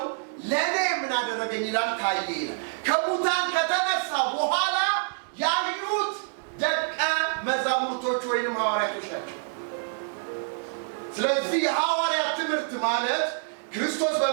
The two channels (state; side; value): silent; left; digital silence